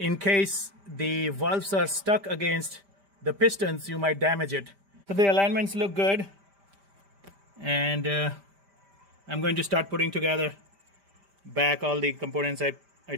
case the valves are stuck against the pistons, you might damage it. So the alignments look good, and I'm going to start putting together back all the components I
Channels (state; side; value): late; left; 5.1 ms